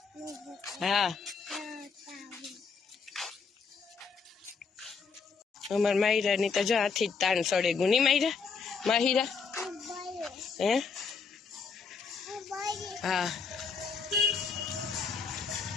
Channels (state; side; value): quieter; right; 5.3 dB